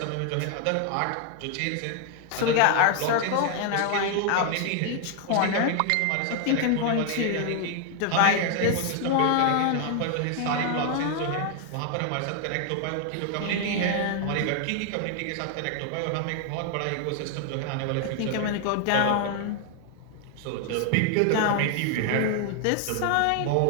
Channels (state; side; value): different; both; correlation 0.00